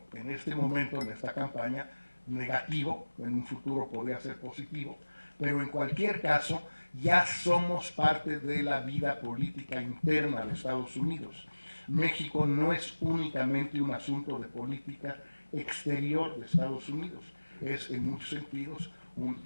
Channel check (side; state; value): both; inverted; correlation -1.00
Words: en este momento, en esta campaña, negativo, en un futuro podría ser positivo, pero en cualquier caso ya somos parte de la vida política interna de Estados Unidos. México no es únicamente un asunto de política exterior de Estados Unidos, es en muchos sentidos un